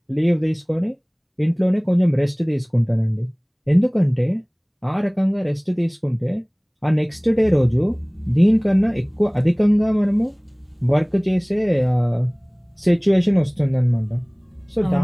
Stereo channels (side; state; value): both; identical; correlation 1.00